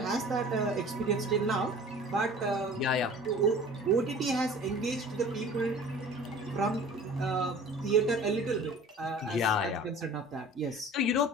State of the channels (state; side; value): normal; both; correlation 0.44